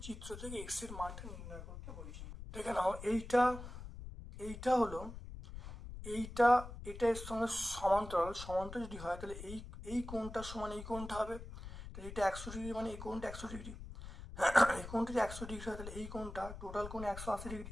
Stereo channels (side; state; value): left; noise; rumble, 11 dB below the sound